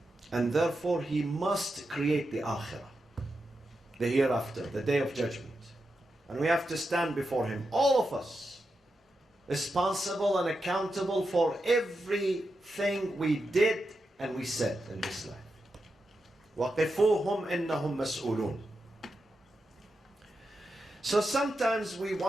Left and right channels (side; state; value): both; normal; correlation 0.88